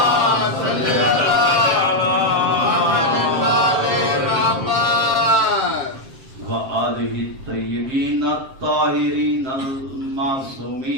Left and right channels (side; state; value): left; late; 7.6 ms